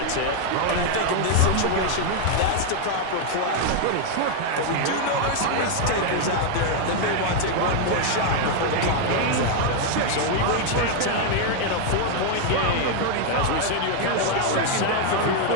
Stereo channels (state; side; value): different; both; correlation 0.00